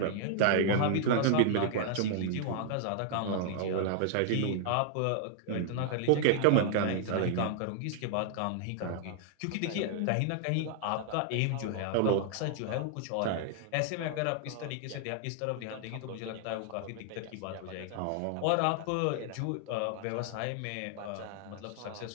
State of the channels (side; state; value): both; different; correlation 0.00